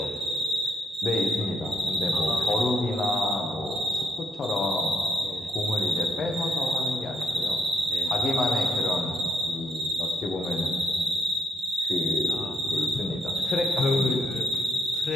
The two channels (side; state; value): both; normal; correlation 0.70